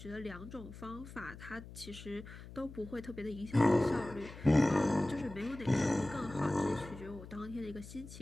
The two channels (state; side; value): noise; left; hum, 14 dB below the sound